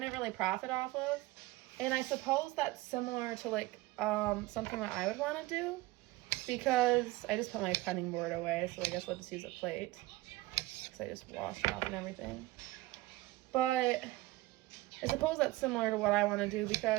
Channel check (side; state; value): left; quieter; 19.0 dB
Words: really profit off of. And I suppose that's similar to like something that I would want to do, because I just put my cutting board away, so I guess I'll just use a plate because I just washed it off and everything. But I suppose that's similar to what I want to do,